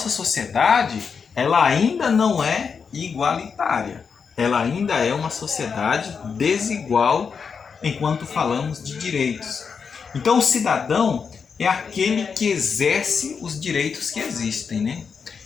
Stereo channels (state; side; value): quieter; right; 5.9 dB